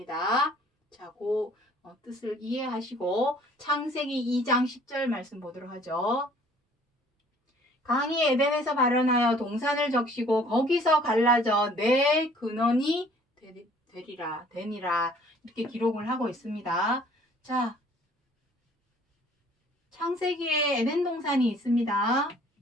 자, 그 뜻을 이해하시고 창세기 2장 10절 말씀 보도록 하죠. 강이 에덴에서 발현하여 동산을 적시고 거기서 갈라져 내 근원이 되니라 이렇게 기록을 하고 있습니다. 자, 창세기에 에덴 동산이 있습니다.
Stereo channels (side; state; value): both; normal; correlation 0.56